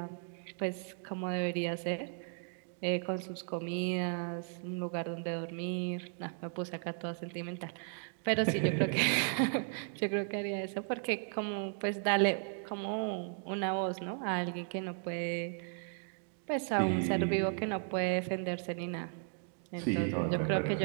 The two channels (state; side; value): silent; left; 54 dB below the other